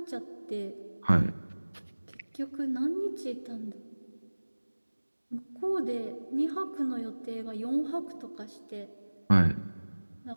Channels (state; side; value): inverted; both; correlation -1.00